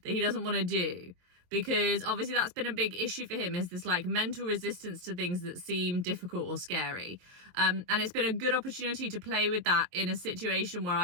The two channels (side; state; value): left; late; 23 ms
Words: that he doesn't want to do, because obviously that's been a big issue for him, is this like mental resistance to things that seem difficult or scary. And it's been a good opportunity to play with that in a situation where